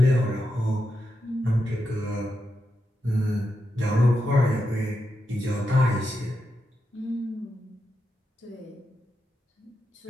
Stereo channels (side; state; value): both; normal; correlation 0.86